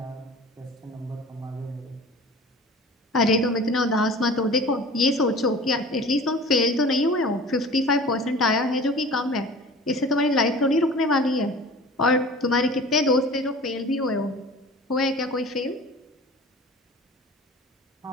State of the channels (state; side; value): normal; both; correlation 0.41